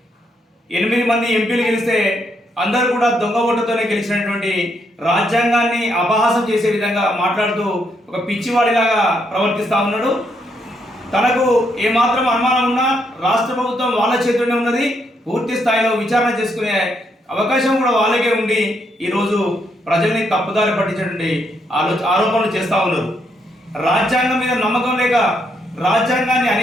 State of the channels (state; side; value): normal; both; correlation 0.76